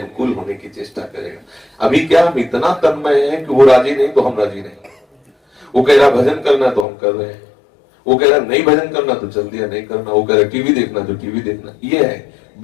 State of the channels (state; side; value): drops out; right; at 6.9 s